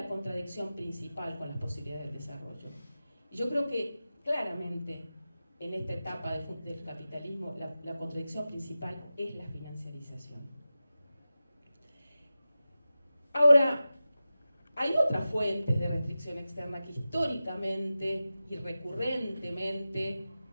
contradicción principal con las posibilidades del desarrollo. Y yo creo que claramente en esta etapa del capitalismo la contradicción principal es la financiarización. Ahora, hay otras fuentes de restricción externa que históricamente y recurrentemente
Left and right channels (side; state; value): both; inverted; correlation -0.94